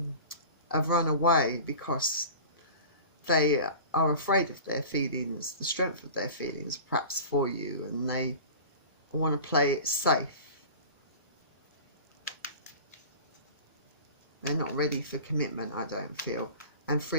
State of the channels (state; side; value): inverted; both; correlation -0.37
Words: run away because they are afraid of their feelings, the strength of their feelings perhaps for you, and they want to play it safe. They're not ready for commitment, I don't feel. And